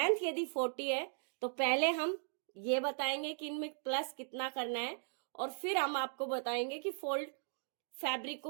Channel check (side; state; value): left; silent; digital silence